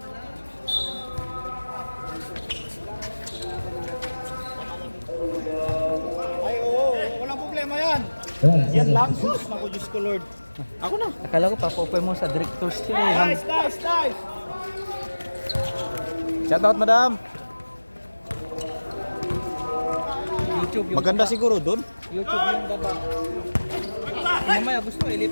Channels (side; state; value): both; inverted; correlation -1.00